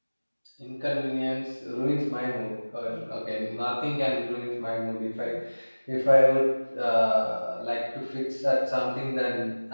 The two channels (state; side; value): inverted; both; correlation -1.00